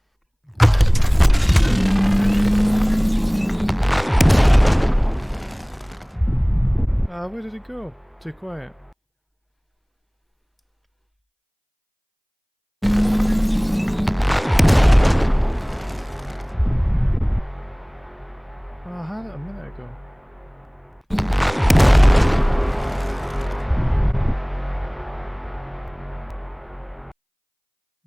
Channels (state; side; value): identical; both; correlation 1.00